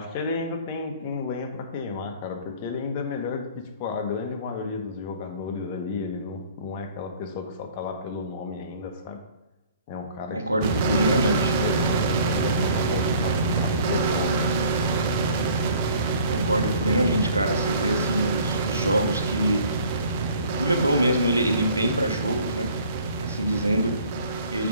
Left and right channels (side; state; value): both; inverted; correlation -0.53